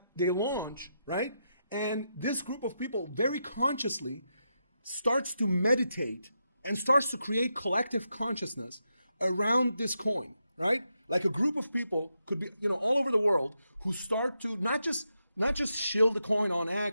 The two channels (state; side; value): inverted; both; correlation -0.84